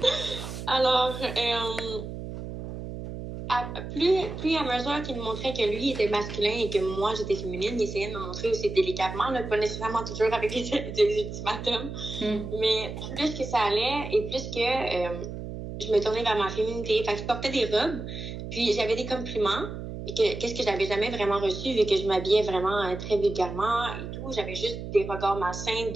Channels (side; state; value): right; noise; hum, 8 dB below the sound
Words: Alors, plus à mesure qu'il me montrait que lui était masculin et que moi j'étais féminine, il essayait de me montrer aussi délicatement, là, pas nécessairement toujours avec des ultimatums, mais plus que ça allait et plus que je me tournais vers ma féminité. Fait que je portais des robes, puis j'avais des compliments, et qu'est-ce que j'avais jamais vraiment reçu vu que je m'habillais vraiment très vulgairement et tout. J'avais juste des regards malsains